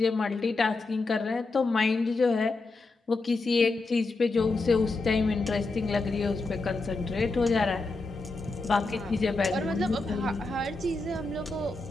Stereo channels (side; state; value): right; quieter; 3.4 dB